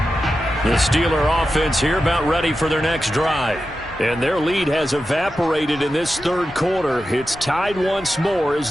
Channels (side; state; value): both; normal; correlation 0.91